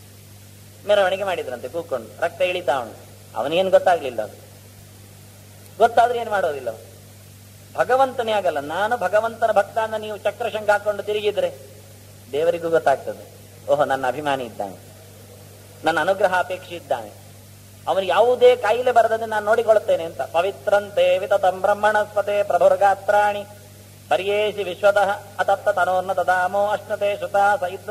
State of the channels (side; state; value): both; identical; correlation 1.00